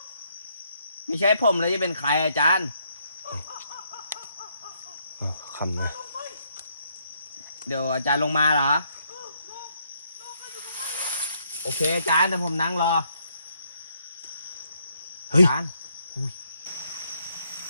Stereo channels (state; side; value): inverted; both; correlation -0.73